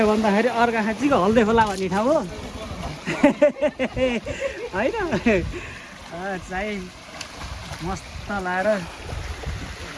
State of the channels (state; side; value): identical; both; correlation 1.00